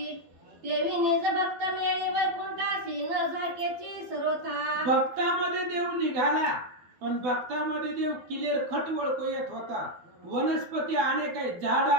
देवी निज भक्त मेळी वैकुंठाशी न झाकेची सर्वथा. भक्तामध्ये देव निघाला, पण भक्तामध्ये देव क्लिअर खट ओळखू येत होता. वनस्पती अनेक आहेत, झाड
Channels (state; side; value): late; left; 12 ms